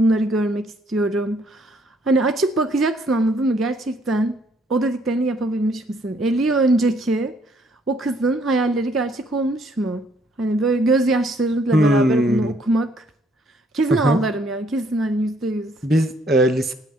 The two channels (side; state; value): both; normal; correlation 0.66